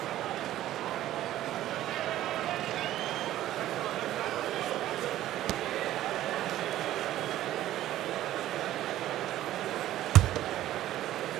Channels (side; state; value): left; quieter; 13.7 dB